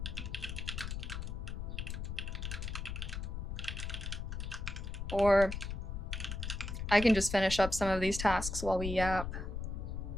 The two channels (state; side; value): noise; left; rumble, 5 dB below the sound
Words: Or I can just finish up some of these tasks while we yap.